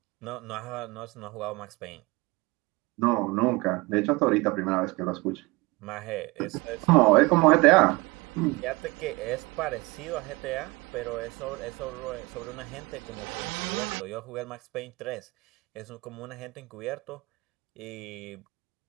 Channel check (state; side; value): quieter; left; 23.8 dB